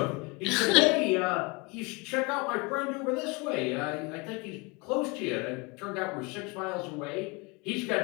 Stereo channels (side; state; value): right; quieter; 28.3 dB